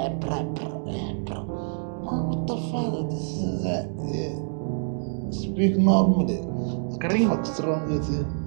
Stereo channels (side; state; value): left; silent; digital silence